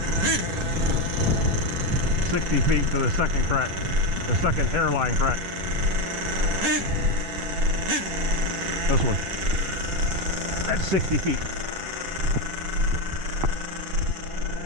60 feet to the second crack, the second hairline crack. This one. That's 60 feet.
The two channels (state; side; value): late; left; 10 ms